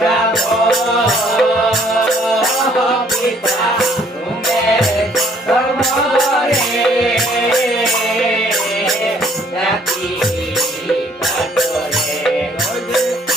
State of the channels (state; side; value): normal; both; correlation 0.61